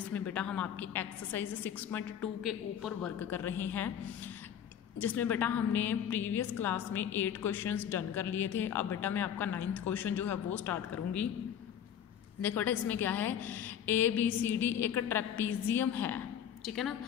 बेटा हम आपकी एक्सरसाइज 6.2 के ऊपर वर्क कर रहे हैं, जिसमें बेटा हमने प्रीवियस क्लास में 8 क्वेश्चंस डन कर लिए थे। अब बेटा मैं आपका 9th क्वेश्चन जो है वो स्टार्ट करूँगी। देखो बेटा इसमें क्या है, ABCD एक ट्रेपीजियम है, ठीक है ना,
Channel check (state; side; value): quieter; right; 9.1 dB